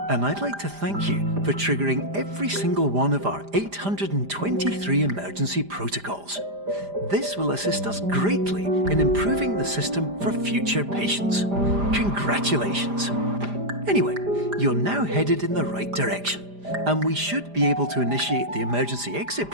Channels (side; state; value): left; late; 5.0 ms